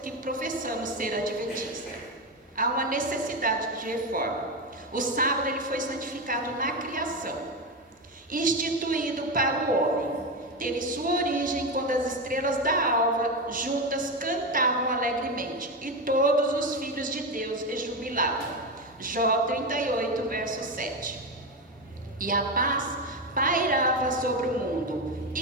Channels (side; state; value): both; normal; correlation 0.15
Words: que professamos ser adventistas. há uma necessidade de reforma. O sábado ele foi santificado na criação, instituído para o homem. Teve sua origem quando as estrelas da alva juntas cantavam alegremente e todos os filhos de Deus rejubilavam. Jó 38, verso 7. E a paz pairava sobre o mundo,